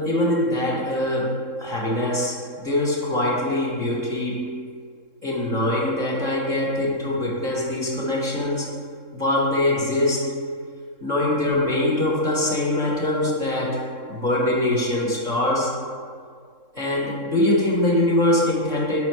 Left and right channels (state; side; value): late; left; 3.7 ms